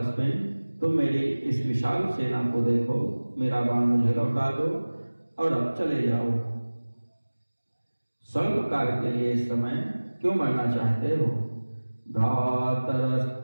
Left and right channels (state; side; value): inverted; both; correlation -1.00